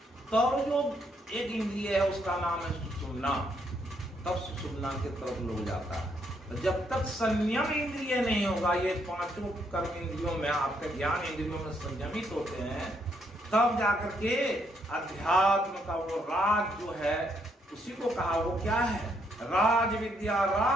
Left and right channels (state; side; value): normal; both; correlation 0.74